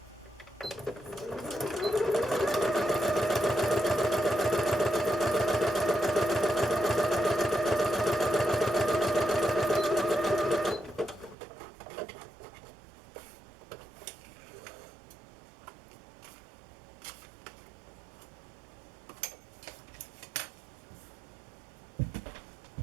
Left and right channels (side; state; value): left; drops out; at 11.4 s